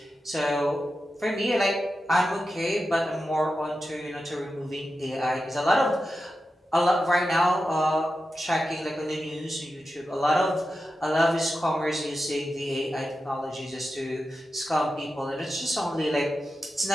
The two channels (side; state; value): both; normal; correlation 0.91